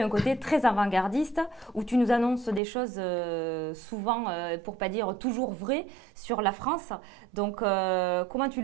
un côté très avant-gardiste où tu nous annonces des choses souvent, pour pas dire toujours vraies, sur la France. Donc, comment tu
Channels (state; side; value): drops out; left; at 2.6 s